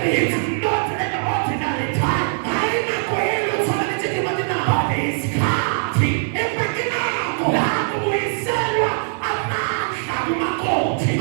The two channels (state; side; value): silent; left; digital silence